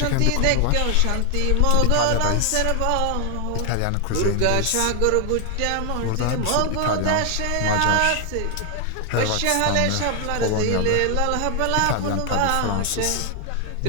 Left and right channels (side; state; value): both; different; correlation 0.00